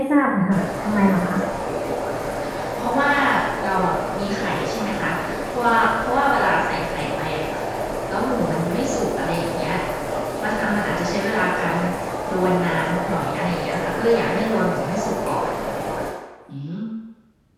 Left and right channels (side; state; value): both; identical; correlation 1.00